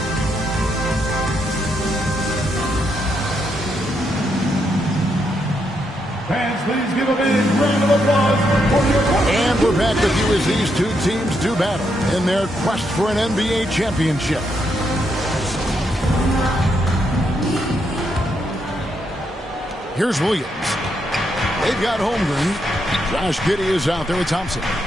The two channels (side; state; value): both; normal; correlation 0.79